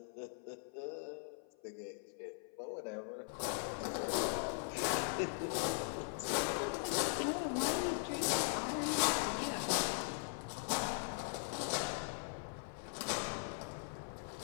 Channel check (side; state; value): right; silent; 51 dB below the other